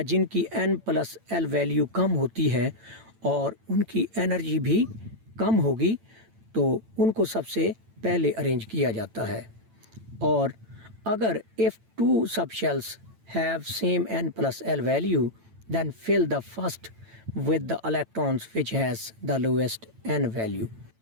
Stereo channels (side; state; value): left; late; 9.0 ms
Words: जिनकी N+L वैल्यू कम होती है और उनकी एनर्जी भी कम होगी, तो उनको सबसे पहले अरेंज किया जाता है। और अगर if two subshells have same N+L value, then fill the first with the electrons which has the lowest N value।